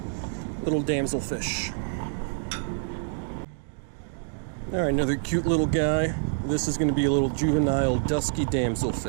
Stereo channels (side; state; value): left; silent; digital silence